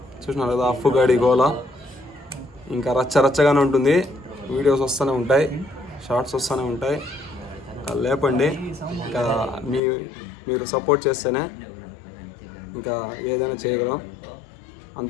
చూసినారు కదా అఫ్ఫు గాడి గోల. ఇంకా రచ్చగానే ఉంటుంది, వీడియోస్ వస్తూనే ఉంటాయి, షార్ట్స్ వస్తూనే ఉంటాయి. లేపండి, ఇంకా మీరు సపోర్ట్ చేస్తేనే ఇంకా ఏదైనా చేయగలం,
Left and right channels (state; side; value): drops out; right; at 9.8 s